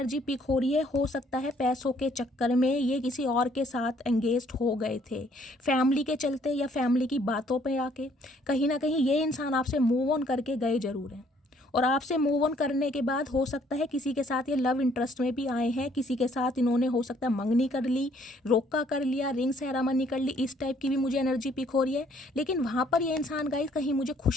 पिक हो रही है, हो सकता है पैसों के चक्कर में ये किसी और के साथ एंगेज्ड हो गए थे, फैमिली के चलते या फैमिली की बातों पे आके कहीं ना कहीं ये इंसान आपसे मूव ऑन करके गए जरूर हैं, और आपसे मूव ऑन करने के बाद हो सकता है किसी के साथ ये लव इंटरेस्ट में भी आए हैं, किसी के साथ इन्होंने हो सकता है मंगनी कर ली, रोका कर लिया, रिंग सेरेमनी कर ली, इस टाइप की भी मुझे एनर्जी पिक हो रही है। लेकिन वहाँ पर ये इंसान गाइस कहीं मुझे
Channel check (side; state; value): both; normal; correlation 0.64